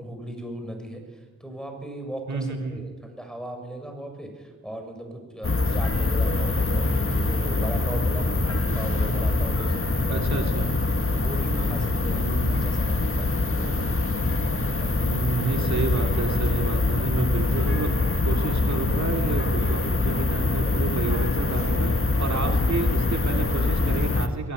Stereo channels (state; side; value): normal; both; correlation 0.67